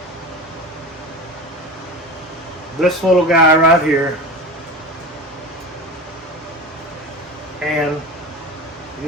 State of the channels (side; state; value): both; normal; correlation 0.29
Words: this little guy right here. And